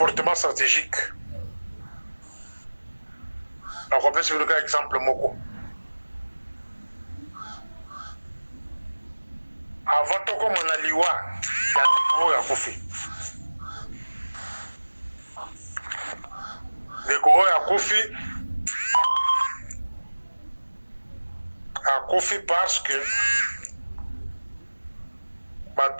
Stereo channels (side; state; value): both; inverted; correlation -1.00